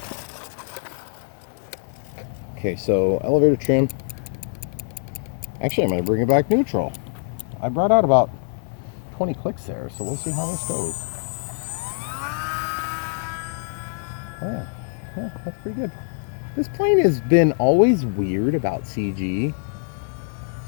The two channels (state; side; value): silent; right; digital silence